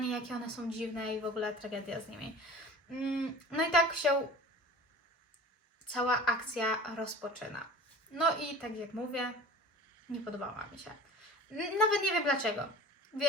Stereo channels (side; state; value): both; normal; correlation 0.40